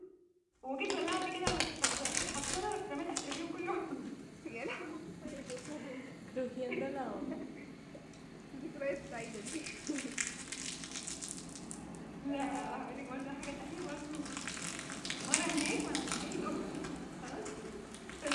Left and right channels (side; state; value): both; identical; correlation 1.00